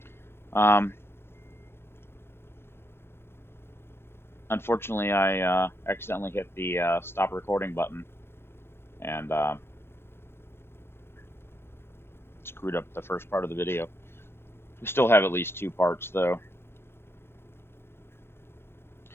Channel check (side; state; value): right; late; 0.11 ms